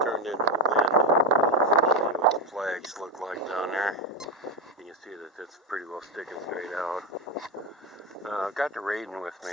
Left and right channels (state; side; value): normal; both; correlation 0.13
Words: turned into wind. I'll show you what the flags look like down there. You can see that it's pretty well sticking straight out. I've got the raiden with me